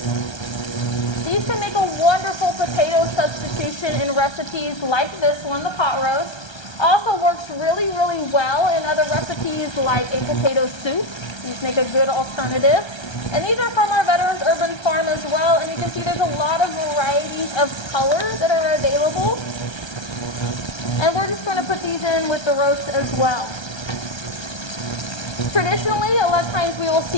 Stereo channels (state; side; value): late; right; 1.3 ms